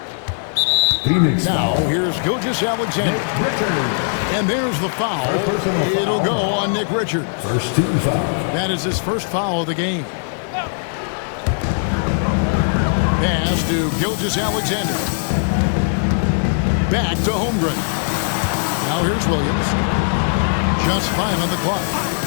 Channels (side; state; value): right; silent; digital silence